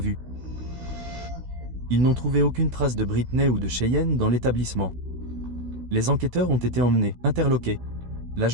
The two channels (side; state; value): left; late; 16 ms